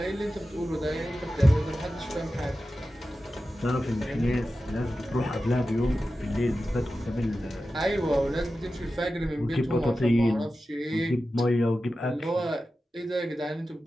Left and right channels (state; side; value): normal; both; correlation 0.93